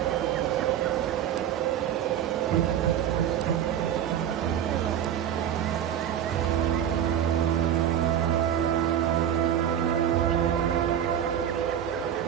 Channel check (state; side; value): quieter; left; 9.9 dB